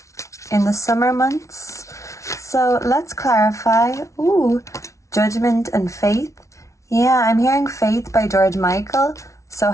in the summer months. So let's clarify. Ooh, Judgment and Faith. Yeah, I'm hearing faith by George Michael. So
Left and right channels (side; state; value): right; late; 0.14 ms